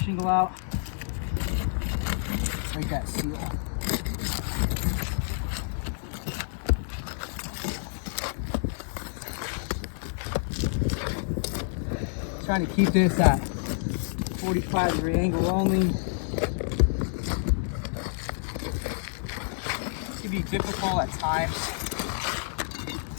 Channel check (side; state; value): right; silent; digital silence